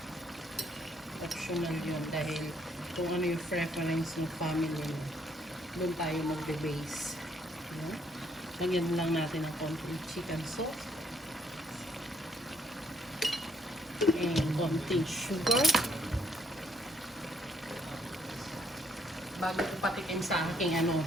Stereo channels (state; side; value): normal; both; correlation 0.69